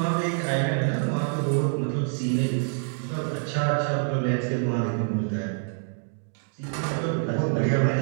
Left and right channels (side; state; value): left; silent; 56 dB below the other